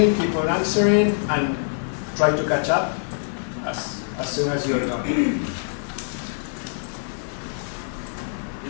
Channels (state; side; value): silent; right; digital silence